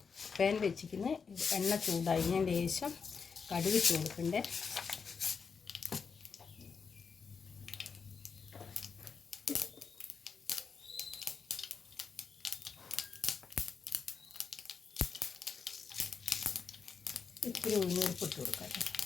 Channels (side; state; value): right; quieter; 5.7 dB